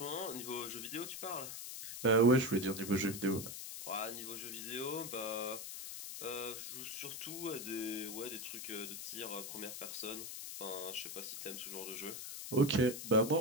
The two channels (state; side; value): noise; left; hiss, 7 dB below the sound